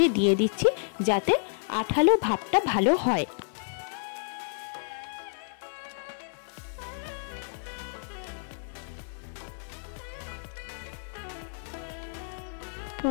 দিয়ে দিচ্ছি, যাতে আঠালো ভাবটা ভালো হয়।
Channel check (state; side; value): silent; right; 58 dB below the other